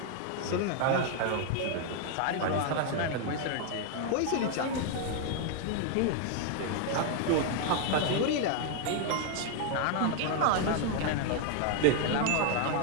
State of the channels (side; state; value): both; different; correlation 0.00